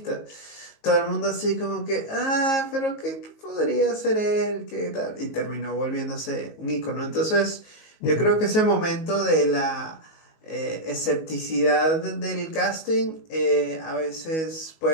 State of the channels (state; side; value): late; right; 19 ms